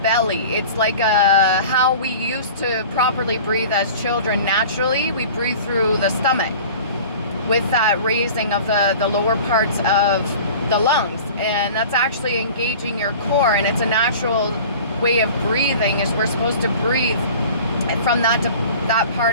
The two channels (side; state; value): both; inverted; correlation -0.41